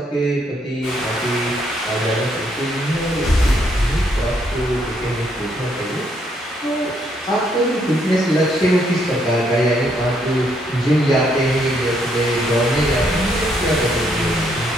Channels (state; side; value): normal; both; correlation 0.72